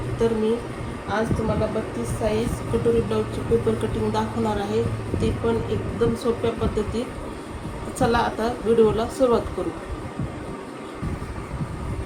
तर मी आज तुम्हाला 32 साईज कटोरी ब्लाऊजची पेपर कटिंग दाखवणार आहे, ते पण एकदम सोप्या पद्धतीत. चला आता व्हिडिओला सुरुवात करू.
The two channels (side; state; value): both; identical; correlation 1.00